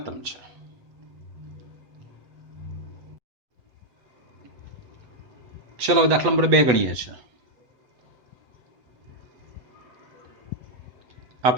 છે. ચલો દાખલા નંબર 2 ગણીએ છીએ. આ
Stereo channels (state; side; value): late; left; 8.1 ms